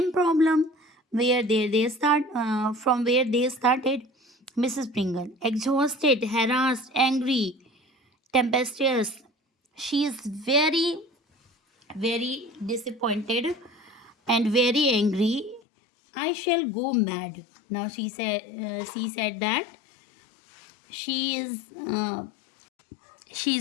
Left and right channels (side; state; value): right; drops out; at 15.6 s